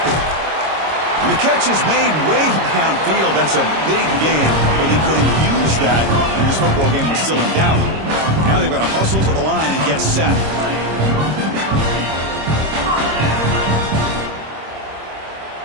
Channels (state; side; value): late; left; 26 ms